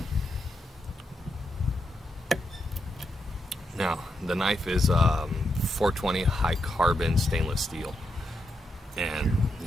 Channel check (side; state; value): both; normal; correlation 0.83